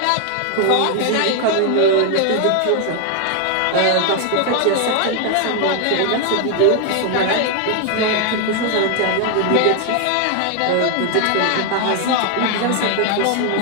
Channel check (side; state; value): both; different; correlation 0.01